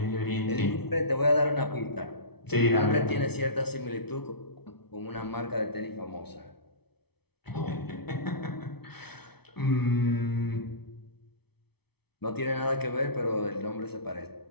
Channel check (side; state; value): right; late; 0.98 ms